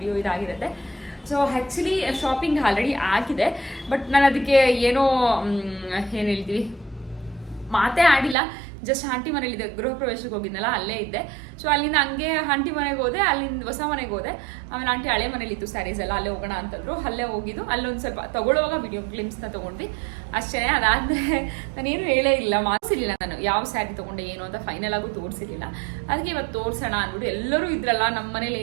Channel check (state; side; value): drops out; left; at 8.3 s